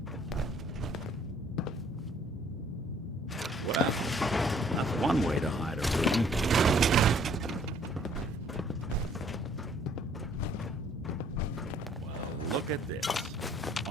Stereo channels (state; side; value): normal; both; correlation 0.60